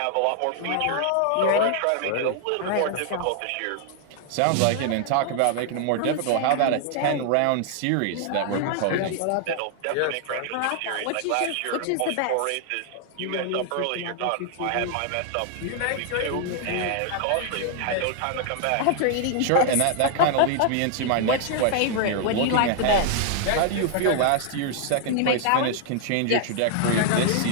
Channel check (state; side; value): different; both; correlation 0.00